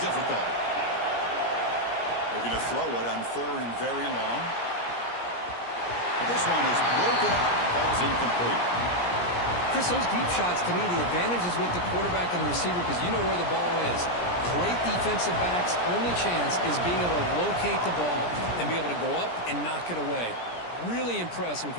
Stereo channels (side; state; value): right; late; 17 ms